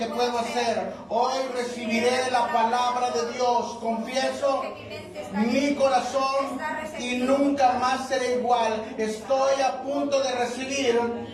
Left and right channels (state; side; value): identical; both; correlation 1.00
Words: puedo hacer. Hoy recibiré la palabra de Dios. Confieso mi corazón y nunca más seré igual. Estoy a punto de recibir